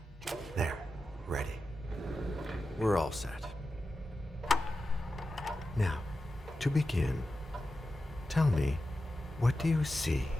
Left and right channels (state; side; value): normal; both; correlation 0.92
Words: There, ready. We're all set. Now, to begin, tell me, what do you see?